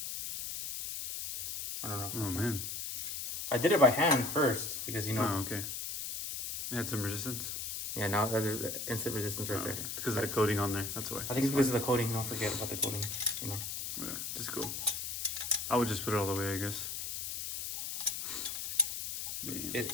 I don't know. Oh, man. I did it by hand first because, you know... Oh, okay. It had some resistance. Yeah, now there's instant resistance right there. Okay. It's because of the coating on there. That's why. I think it's because of the coating. Don't forget about the coating, you know. Yeah, just go. I would just put it all the way, I guess. Yeah.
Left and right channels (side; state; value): left; noise; hiss, 4 dB below the sound